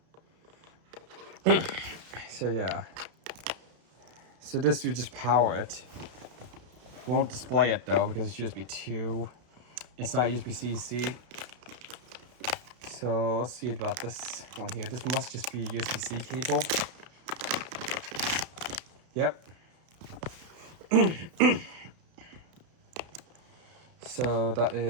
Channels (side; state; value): left; late; 32 ms